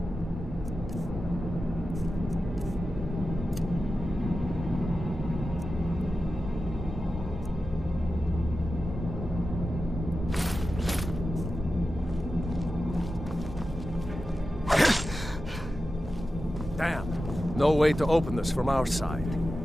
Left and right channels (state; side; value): normal; both; correlation 0.92